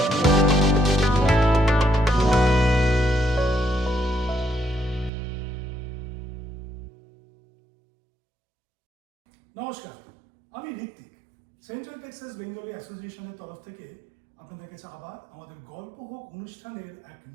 আমি Hrithik. Central Texas Bengali অ্যাসোসিয়েশনের তরফ থেকে আপনাদের কাছে আবার আমাদের গল্প হোক অনুষ্ঠানের এক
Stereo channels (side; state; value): left; drops out; at 5.1 s